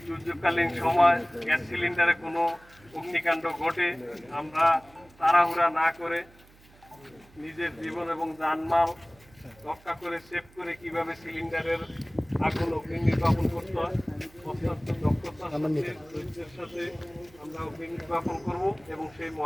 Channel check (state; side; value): noise; right; hum, 26 dB below the sound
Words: দুর্যোগকালীন সময় গ্যাস সিলিন্ডারে কোনো অগ্নিকাণ্ড ঘটে, আমরা তাড়াহুড়া না করে নিজের জীবন এবং জানমাল রক্ষা করে সেভ করে কিভাবে সিলিন্ডারের আগুন অগ্নি নির্বাপন করতে হয় অত্যন্ত দক্ষতার সাথে ধৈর্যের সাথে আমরা অগ্নি নির্বাপন করব এবং সেই